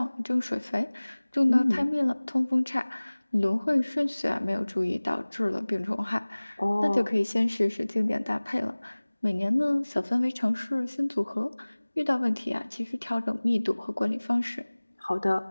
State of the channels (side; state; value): both; inverted; correlation -1.00